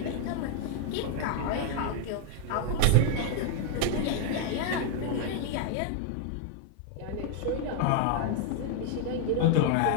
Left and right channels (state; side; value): different; both; correlation 0.00